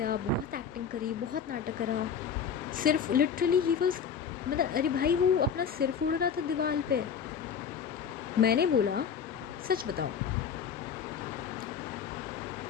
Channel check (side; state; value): right; quieter; 7.0 dB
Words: बहुत एक्टिंग करी, बहुत नाटक करा। सिर्फ लिटरली ही वॉज, मतलब अरे भाई वो अपना सिर फोड़ रहा था दीवार पे। मैंने बोला सच बताओ।